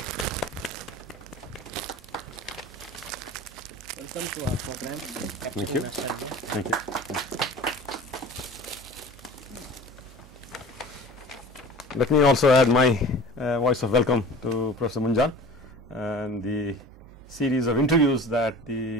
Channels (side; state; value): both; normal; correlation 0.40